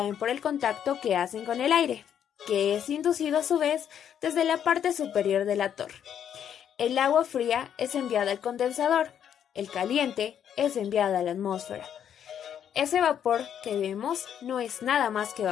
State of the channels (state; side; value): quieter; right; 9.1 dB